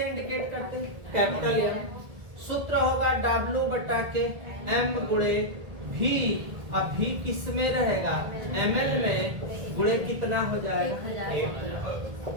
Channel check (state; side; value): late; left; 1.8 ms